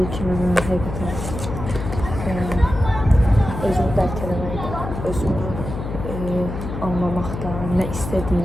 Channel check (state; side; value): noise; left; hum, 6 dB below the sound